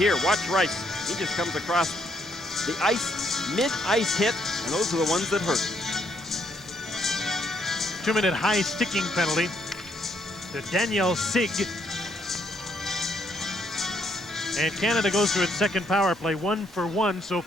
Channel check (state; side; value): normal; both; correlation 0.71